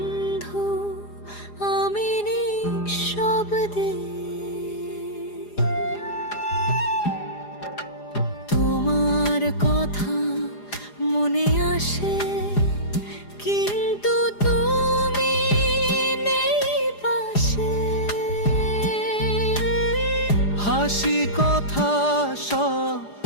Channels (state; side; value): late; right; 4.9 ms